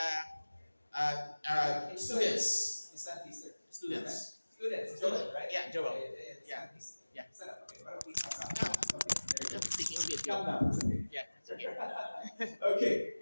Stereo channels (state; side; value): inverted; both; correlation -1.00